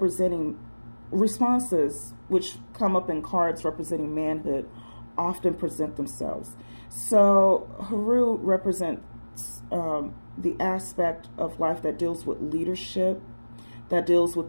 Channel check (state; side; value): inverted; both; correlation -1.00